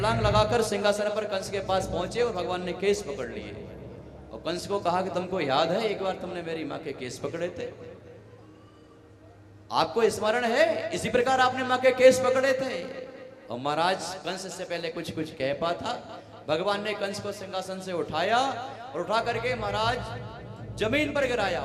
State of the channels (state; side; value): identical; both; correlation 1.00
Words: लगाकर सिंहासन पर कंस के पास पहुंचे और भगवान ने केस पकड़ लिए और कंस को कहा कि तुमको याद है एक बार तुमने मेरी माँ के केस पकड़े थे, आपको स्मरण है? इसी प्रकार आपने माँ के केस पकड़े थे। और महाराज कंस से पहले कुछ कुछ कह पा था। भगवान ने कंस को सिंहासन से उठाया और उठा करके महाराज जमीन पर गिराया।